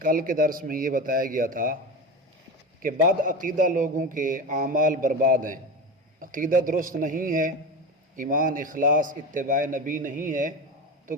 کے درس میں یہ بتایا گیا تھا کہ بد عقیدہ لوگوں کے اعمال برباد ہیں، عقیدہ درست نہیں ہے، ایمان اخلاص اتباع نبی نہیں ہے تو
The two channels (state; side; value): normal; both; correlation 0.25